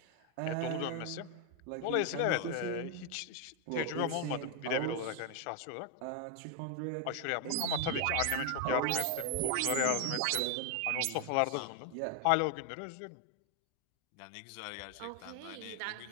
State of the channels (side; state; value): both; different; correlation 0.00